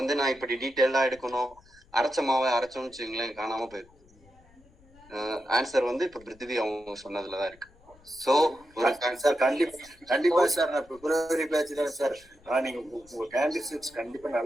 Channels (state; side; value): noise; left; rumble, 27 dB below the sound